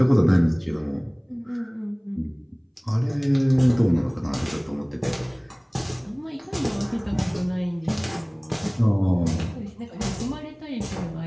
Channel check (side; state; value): both; identical; correlation 1.00